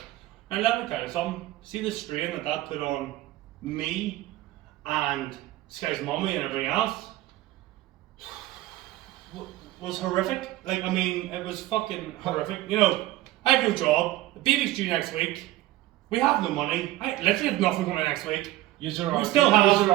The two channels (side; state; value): left; quieter; 16.3 dB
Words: And let me tell you something. See the strain that put on me and Sky's mummy and everything else was horrific. Like, I mean, it was fucking horrific. You know, I have no job. The baby's due next week. We have no money. I literally have nothing coming next week. We still have.